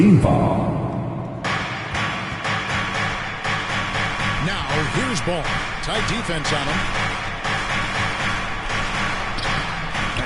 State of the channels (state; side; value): identical; both; correlation 1.00